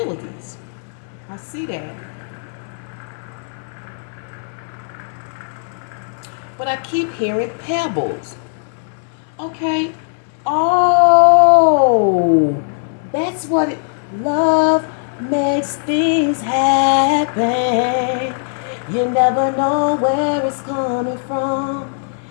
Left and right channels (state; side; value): silent; right; 67 dB below the other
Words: I see that. But I keep hearing pebbles. Okay. Oh, that's what it, love makes things happen. You never know where it's coming from.